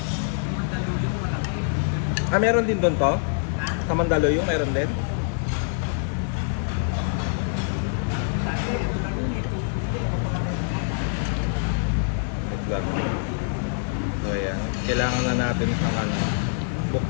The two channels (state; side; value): silent; right; 62 dB below the other